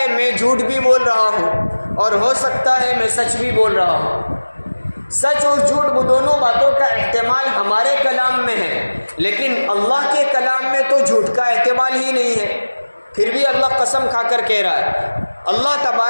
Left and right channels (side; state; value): both; inverted; correlation -1.00